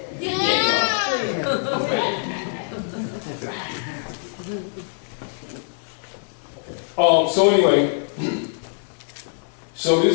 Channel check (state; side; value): silent; right; digital silence